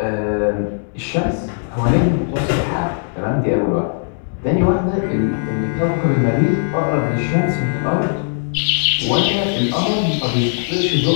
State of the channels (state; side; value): silent; right; digital silence